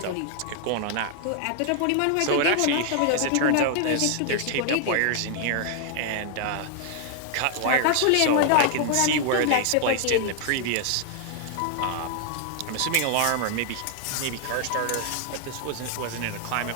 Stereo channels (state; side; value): different; both; correlation 0.00